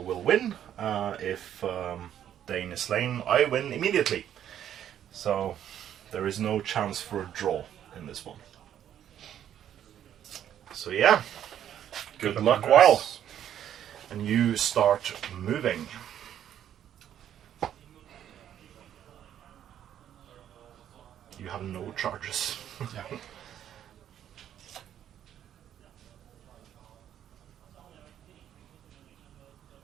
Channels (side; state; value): left; quieter; 10.3 dB